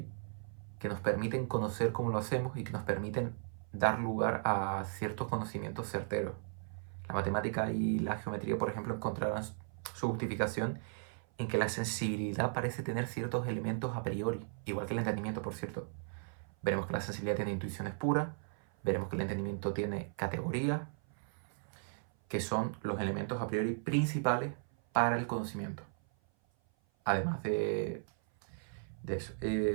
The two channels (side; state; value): left; silent; 54 dB below the other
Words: que nos permiten conocer cómo lo hacemos y que nos permiten dar lugar a ciertos conocimientos certeros. La matemática y la geometría, por ejemplo, encontrarán su justificación en que la sensibilidad parece tener ciertos elementos a priori, igual que el entendimiento, por cierto. Veremos que la sensibilidad tiene intuiciones puras, veremos que el entendimiento tiene categorías, que son los elementos a priori principales para el conocimiento. Además de eso.